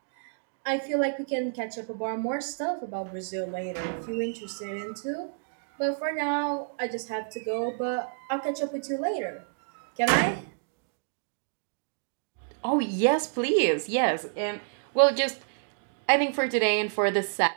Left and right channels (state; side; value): silent; left; digital silence